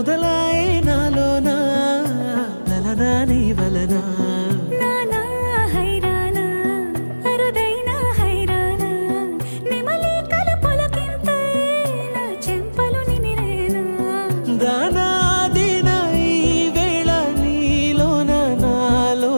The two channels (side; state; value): both; inverted; correlation -1.00